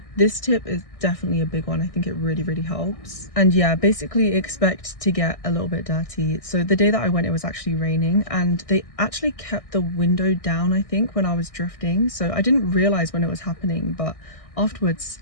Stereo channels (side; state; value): right; late; 1.6 ms